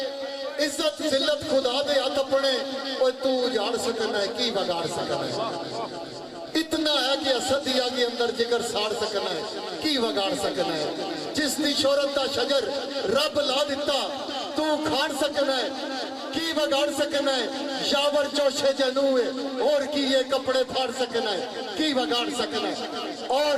इज्जत जिल्लत खुदा दे हाथ अपने तू जान सकना है की बगाड़ सकना है इतना है कि असद दिया के अंदर जिगर साड़ सकना है की बगाड़ सकना है जिसकी शोहरत का शजर रब ला दिता तू खाड़ सकना है की बगाड़ सकना है यावर जोशे जनू है और की ये कपड़े फाड़ सकना है की बगाड़ सकना है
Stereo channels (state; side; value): identical; both; correlation 1.00